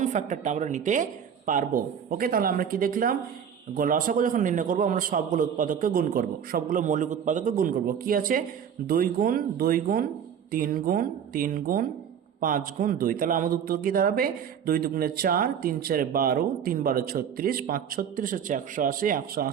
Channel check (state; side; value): quieter; left; 8.1 dB